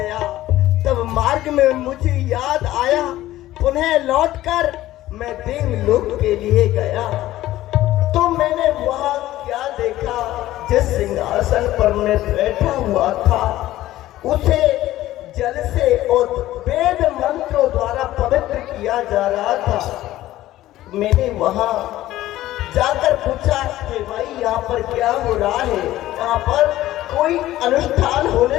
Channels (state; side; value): quieter; right; 15.1 dB